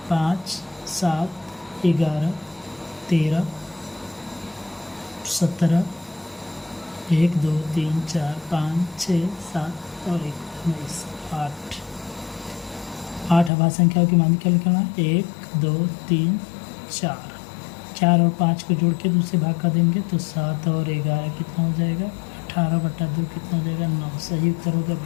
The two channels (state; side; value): drops out; right; at 13.5 s